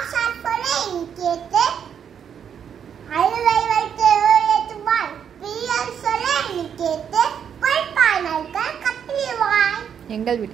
சொல்ல நீ கேட்டு அழுவை வைத்து ஏற்றுவாய். பிரியன் சொல்ல நீ கேட்டு பொய்ப்பாய் நாய்கள் கத்திடுவாய். எங்கள்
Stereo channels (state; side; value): quieter; left; 8.1 dB